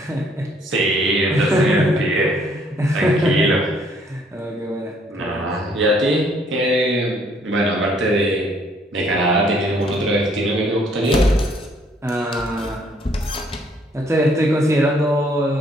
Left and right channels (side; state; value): both; normal; correlation 0.65